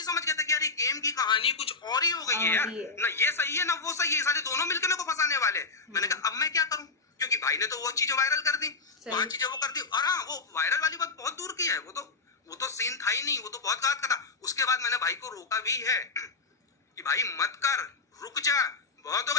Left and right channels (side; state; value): right; quieter; 4.2 dB